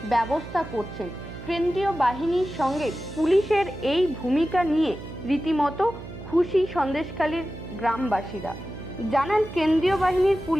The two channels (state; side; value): noise; right; hum, 13 dB below the sound